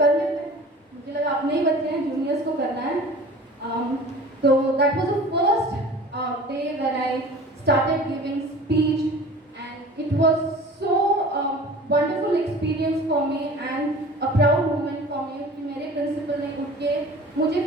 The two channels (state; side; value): normal; both; correlation 0.42